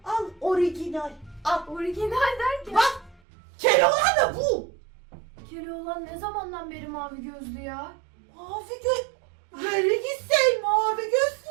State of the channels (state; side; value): drops out; left; at 3.2 s